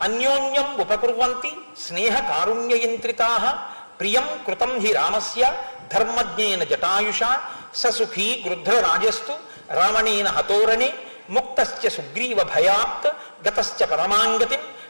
అన్యోన్యం ఉపకుర్వంతి స్నేహ కారుణ్యయంత్రితాః ప్రియం కృతం హి రామస్య ధర్మజ్ఞేన జటాయుషా ససుఖీ గృధ్రరాజస్తు రావణేన హతోరణే ముక్తశ్చ సుగ్రీవ భయాత్ గతశ్చ పరమాంగతిం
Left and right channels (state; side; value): inverted; both; correlation -1.00